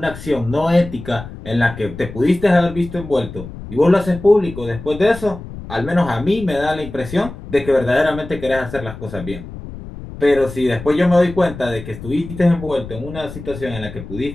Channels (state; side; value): noise; left; rumble, 13 dB below the sound